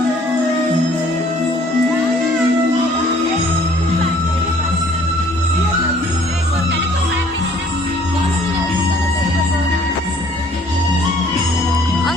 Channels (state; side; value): normal; both; correlation 0.58